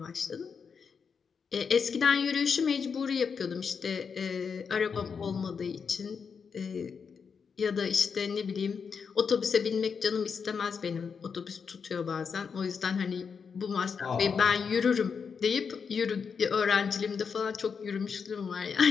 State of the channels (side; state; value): right; quieter; 6.1 dB